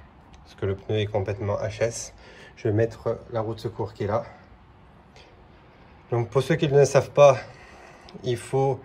Parce que le pneu est complètement HS. Je vais mettre la roue de secours qui est là. Donc pour ceux qui ne le savent pas, il faut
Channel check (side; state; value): both; identical; correlation 1.00